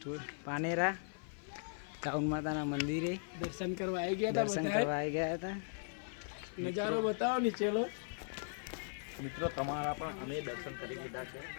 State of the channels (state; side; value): silent; right; 52 dB below the other